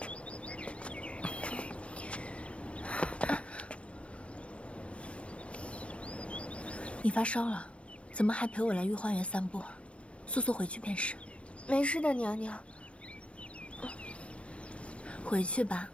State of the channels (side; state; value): right; late; 0.060 ms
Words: 你发烧了，怎么还陪我来御花园散步？速速回去便是。没事的，娘娘。回去吧。